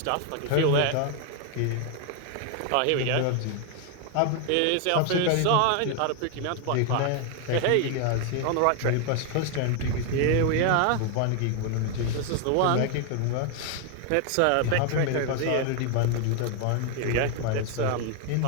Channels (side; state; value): both; different; correlation 0.01